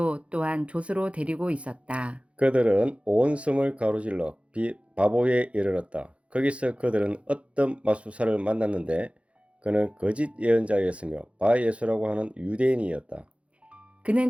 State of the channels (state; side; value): late; left; 0.062 ms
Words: 또한 조수로 데리고 있었다. 그들은 온 섬을 가로질러 바보에 이르렀다. 거기서 그들은 어떤 마술사를 만났는데 그는 거짓 예언자였으며 바예수라고 하는 유대인이었다.